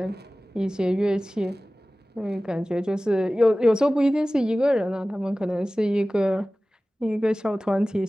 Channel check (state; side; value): normal; both; correlation 0.97